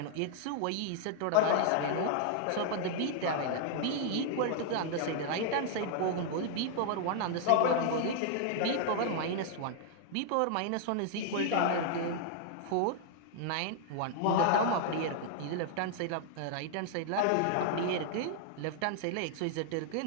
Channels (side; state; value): both; different; correlation -0.01